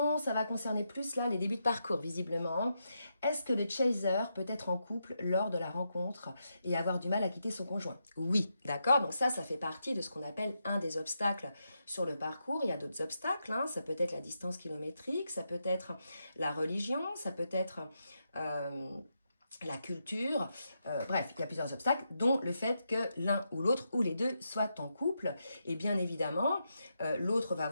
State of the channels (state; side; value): inverted; both; correlation -0.84